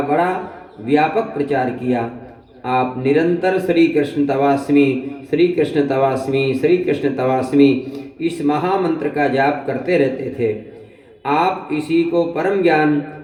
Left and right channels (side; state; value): both; identical; correlation 1.00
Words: बड़ा व्यापक प्रचार किया। आप निरंतर श्री कृष्ण तवास्मी, श्री कृष्ण तवास्मी, श्री कृष्ण तवास्मी इस महामंत्र का जाप करते रहते थे। आप इसी को परम ज्ञान,